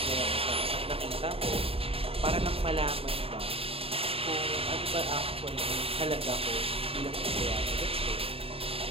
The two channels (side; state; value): left; late; 0.27 ms